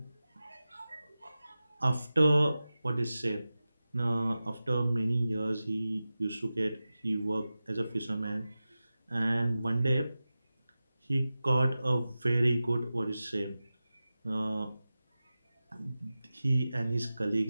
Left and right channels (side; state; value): both; inverted; correlation -0.95